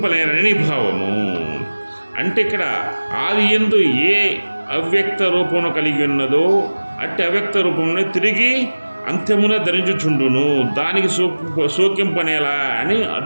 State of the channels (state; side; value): inverted; both; correlation -1.00